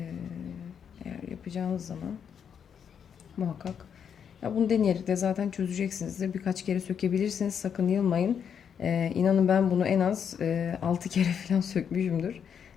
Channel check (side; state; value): right; quieter; 7.7 dB